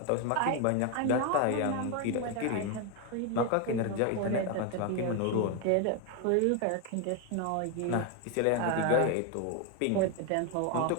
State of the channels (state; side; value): different; both; correlation 0.01